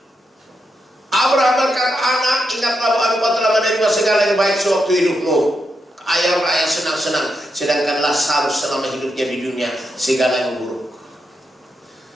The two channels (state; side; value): normal; both; correlation 0.84